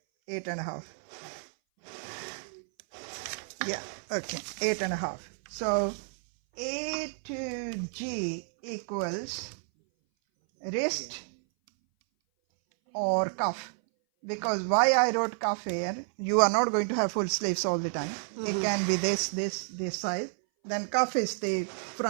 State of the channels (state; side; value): silent; left; 58 dB below the other